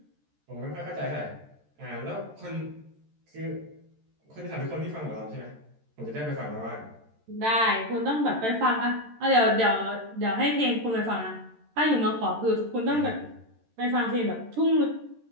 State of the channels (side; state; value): left; late; 13 ms